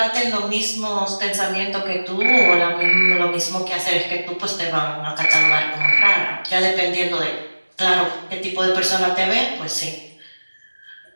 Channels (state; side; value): inverted; both; correlation -1.00